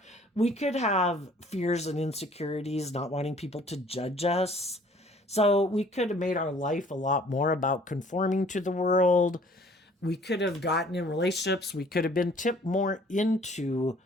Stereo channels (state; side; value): normal; both; correlation 0.55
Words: We could have fears and insecurities, not wanting people to judge us. So we could have made our life a lot more about conforming to the world. We could have gotten in relationships. We could have been tipped more into